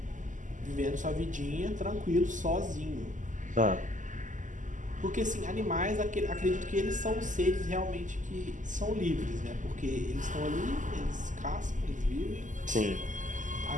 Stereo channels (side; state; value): left; late; 0.37 ms